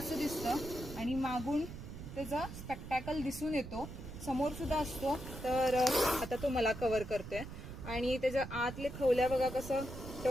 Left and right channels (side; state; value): right; noise; rumble, 10 dB below the sound